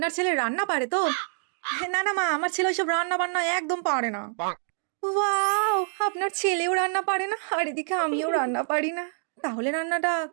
ছেলে রান্না পারে তো? না না মা, আমার ছেলে ওইসব রান্না বান্না একদম পারে না। ওয়াও, আপনার ছেলেও রান্না পারে না, আর এদিকে আমিও রান্না পারি না। তাহলে রান্নাটা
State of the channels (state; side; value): silent; left; digital silence